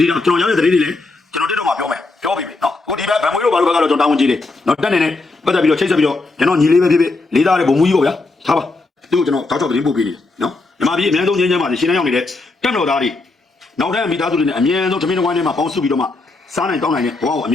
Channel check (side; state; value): right; quieter; 3.4 dB